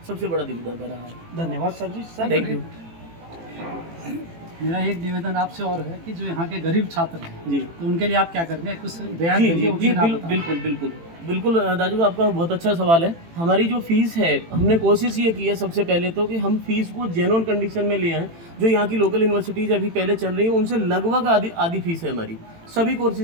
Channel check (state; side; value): late; left; 18 ms